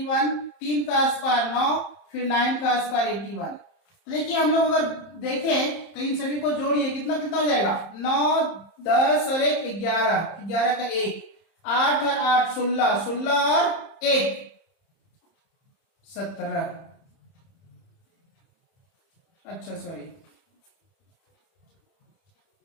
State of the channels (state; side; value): late; right; 30 ms